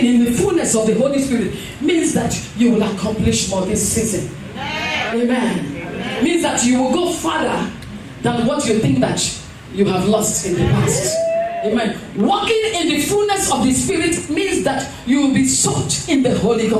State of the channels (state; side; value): identical; both; correlation 1.00